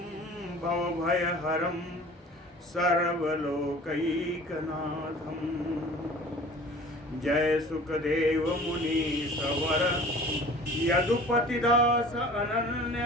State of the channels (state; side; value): normal; both; correlation 0.45